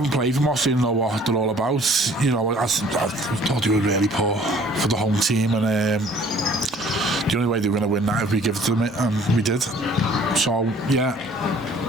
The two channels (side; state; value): both; normal; correlation 0.55